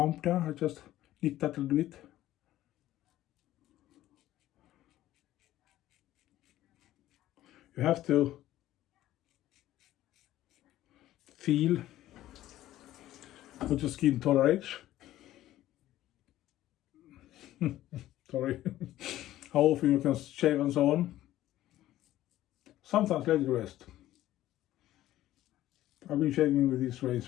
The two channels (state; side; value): quieter; right; 14.3 dB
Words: there. I just nick that a little bit. You have to feel what your skin tolerates. Sorry. How often you can shave and so on. Sometimes let it rest. I've been shaving with this